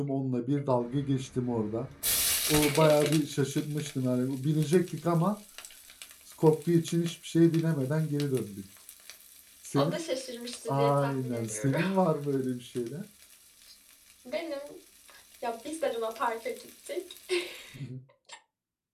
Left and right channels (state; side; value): identical; both; correlation 1.00